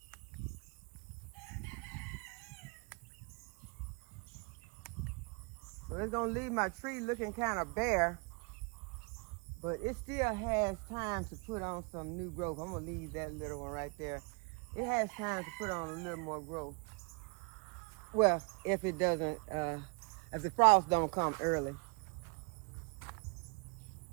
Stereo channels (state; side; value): quieter; left; 32.5 dB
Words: So it's going to leave my tree looking kind of bare, but it still has time to put on some new growth. I'm going to leave that little one right there. It has time to put on a little more growth. Well, if it doesn't, if the frost don't come early.